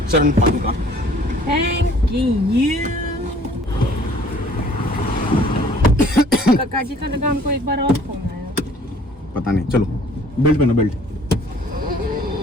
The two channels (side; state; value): both; normal; correlation 0.55